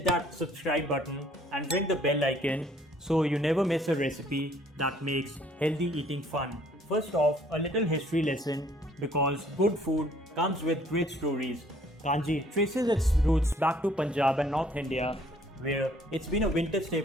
that subscribe button and ring the bell icon so you never miss a recipe that makes healthy eating fun. First off, a little history lesson because good food comes with great stories. Kanji traces its roots back to Punjab and North India, where it's been a winter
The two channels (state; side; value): normal; both; correlation 0.60